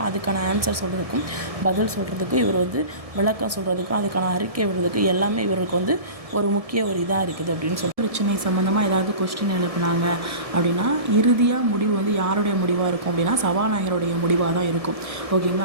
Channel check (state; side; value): late; left; 1.7 ms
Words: அதுக்கான ஆன்சர் சொல்கிறதுக்கும் பதில் சொல்கிறதுக்கும், இவர் வந்து விளக்கம் சொல்கிறதுக்கும், அதுக்கான அறிக்கை விடுறதுக்கு எல்லாமே இவருக்கு வந்து ஒரு முக்கிய இதாக இருக்குது அப்படின்னு சொல்லி பிரச்சனை சம்மந்தமாக ஏதாவது கொஸ்டின் எழுப்புனாங்க அப்படின்னா இறுதியாக முடிவு வந்து யாருடைய முடிவாக இருக்கும் அப்படின்னா சபாநாயகருடைய முடிவாக தான் இருக்கும்.